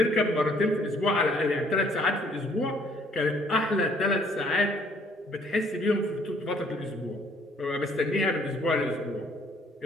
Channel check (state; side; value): normal; both; correlation 0.62